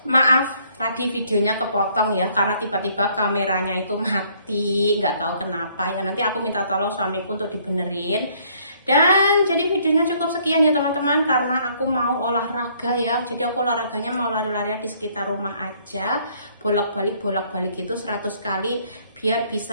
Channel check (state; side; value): inverted; both; correlation -0.64